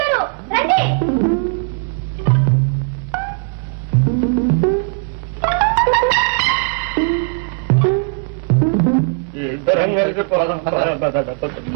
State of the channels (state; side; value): quieter; left; 36.6 dB